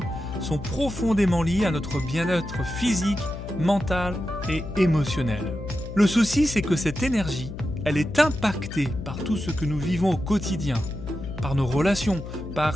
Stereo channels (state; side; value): noise; left; hum, 9 dB below the sound